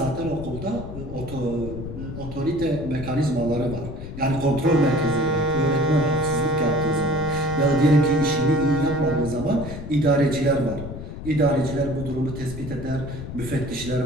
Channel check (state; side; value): noise; left; rumble, 9 dB below the sound